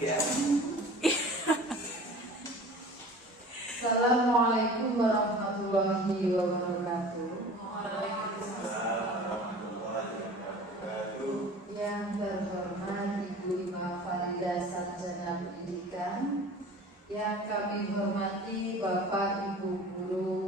Assalamualaikum warahmatullahi wabarakatuh. Yang terhormat Ibu Ima Farida Sarjana Pendidikan, yang kami hormati Bapak Ibu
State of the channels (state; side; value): normal; both; correlation 0.42